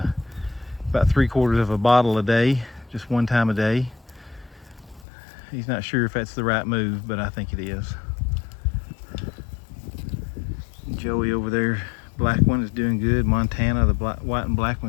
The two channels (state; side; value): drops out; right; at 5.1 s